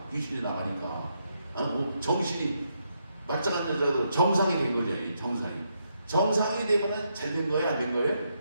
귀신이 나가니까 정신이 말짱한 여자가 정상이 된 거죠. 정상이 되면은 잘 된 거예요? 안 된 거예요?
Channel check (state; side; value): inverted; both; correlation -0.79